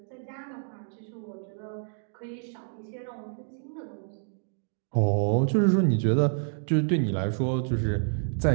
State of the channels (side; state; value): left; silent; digital silence